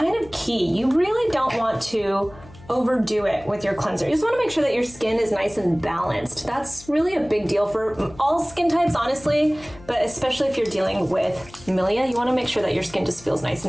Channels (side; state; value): left; noise; hum, 21 dB below the sound